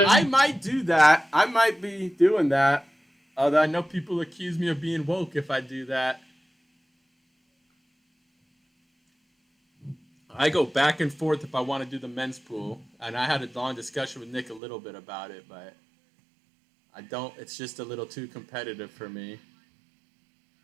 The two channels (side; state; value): left; drops out; at 14.6 s